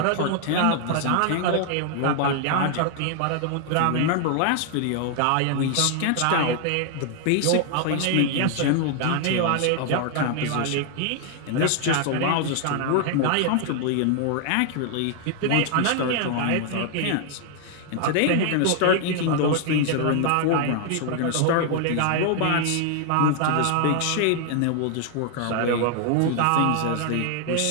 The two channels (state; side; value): different; both; correlation 0.00